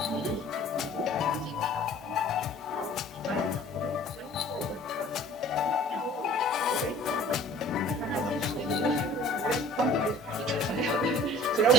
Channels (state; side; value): normal; both; correlation 0.48